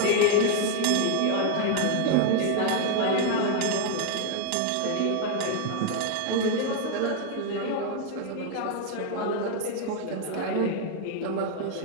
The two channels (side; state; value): both; different; correlation 0.00